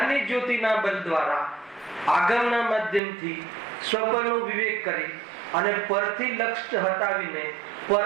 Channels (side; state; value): left; drops out; at 3.0 s